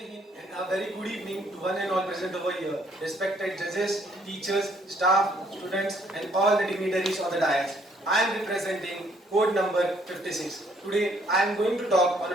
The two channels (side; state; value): both; normal; correlation 0.66